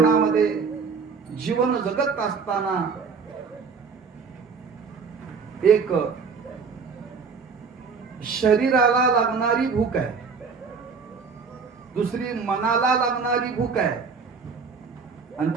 जीवन जगत असताना एक शरीराला लागणारी भूक आहे, दुसरी मनाला लागणारी भूक आहे, आणि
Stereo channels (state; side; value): quieter; left; 5.4 dB